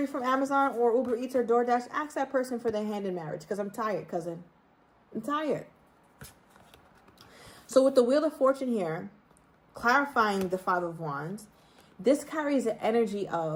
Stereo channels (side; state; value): both; identical; correlation 1.00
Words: from Amazon or Uber Eats or DoorDash, ask that person for their hand in marriage, because I'm tired, cousin. I'm tired. So with the Wheel of Fortune here, clarifying the Five of Wands, this carries the energy